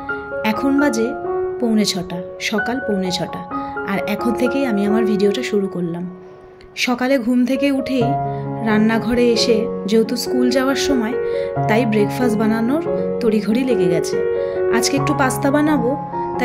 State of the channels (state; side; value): identical; both; correlation 1.00